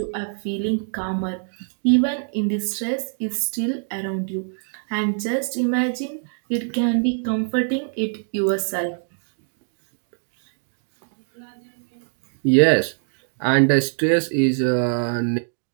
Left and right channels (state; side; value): silent; left; 63 dB below the other